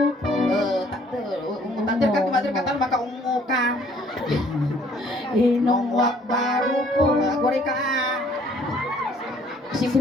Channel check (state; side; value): normal; both; correlation 0.59